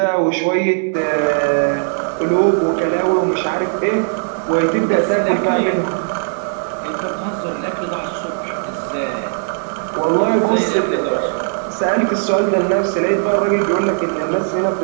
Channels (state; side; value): silent; left; digital silence